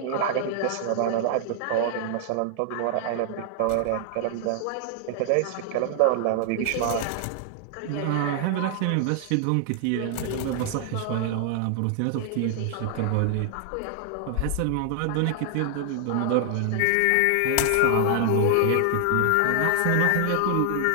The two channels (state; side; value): different; both; correlation 0.00